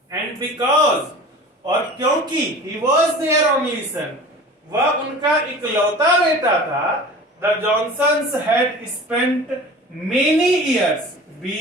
एंड बिकॉज, और क्योंकि he was their only son, वह उनका इकलौता बेटा था, The Johnsons had spent many years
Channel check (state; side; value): normal; both; correlation 0.39